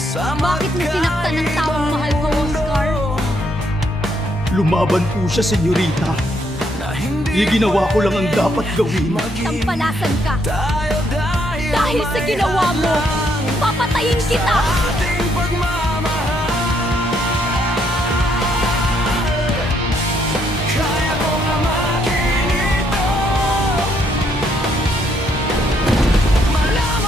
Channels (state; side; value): normal; both; correlation 0.72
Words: Bakit mo sinaktan ng taong mahal ko, Oscar? Lumaban po siya, senyorita. Ginawa ko lang ang dapat gawin. Tampalasan ka! Dahil sa ginawa mo, papatayin kita!